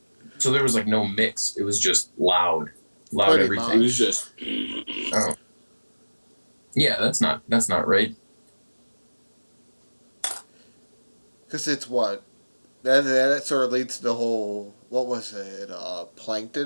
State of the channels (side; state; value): both; inverted; correlation -1.00